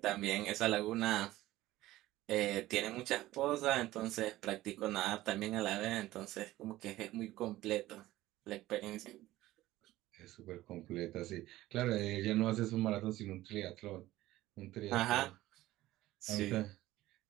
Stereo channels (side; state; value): left; quieter; 16.2 dB